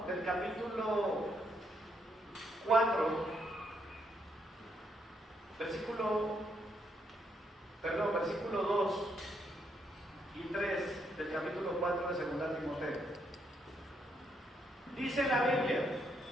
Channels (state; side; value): normal; both; correlation 0.76